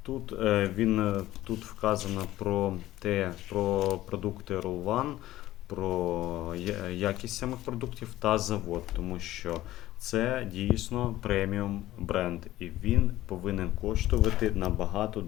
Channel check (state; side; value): quieter; right; 15.2 dB